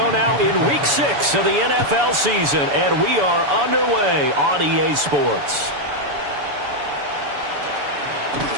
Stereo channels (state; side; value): late; left; 7.0 ms